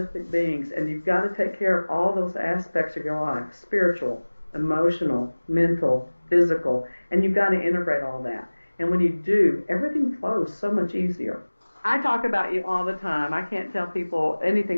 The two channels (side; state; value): both; inverted; correlation -1.00